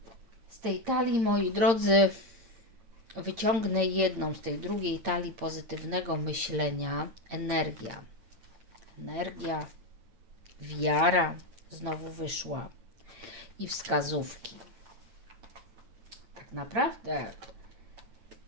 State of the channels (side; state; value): left; late; 8.7 ms